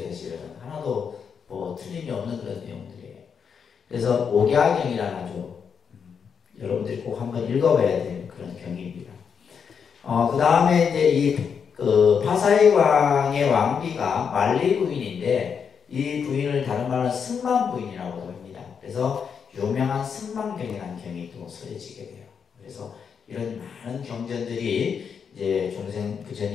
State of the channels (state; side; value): quieter; right; 6.7 dB